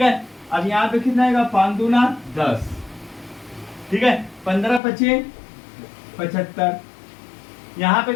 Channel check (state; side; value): drops out; right; at 4.8 s